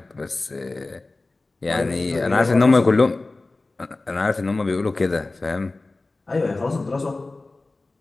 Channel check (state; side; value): quieter; right; 3.2 dB